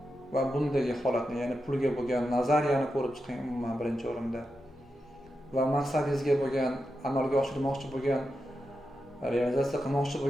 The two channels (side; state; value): both; normal; correlation 0.88